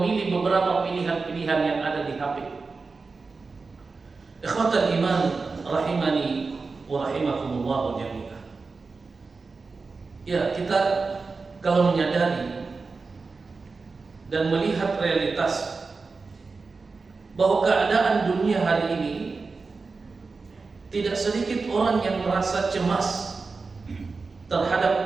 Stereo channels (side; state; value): left; quieter; 4.3 dB